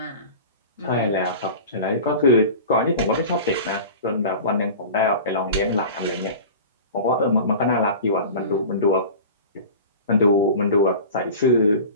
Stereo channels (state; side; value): inverted; both; correlation -0.36